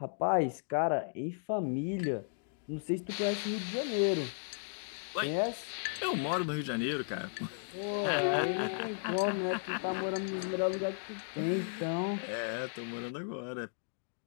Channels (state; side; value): silent; right; digital silence